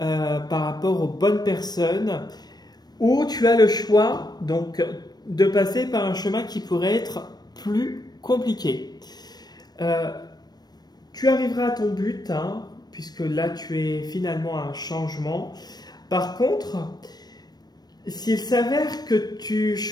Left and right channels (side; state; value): right; late; 0.19 ms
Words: rapport aux bonnes personnes, ou tu as le choix donc de passer par un chemin qui pourrait être plus compliqué. Tu arriveras à ton but, hein, puisque là tu es finalement à un changement. Par contre, s'il s'avère que tu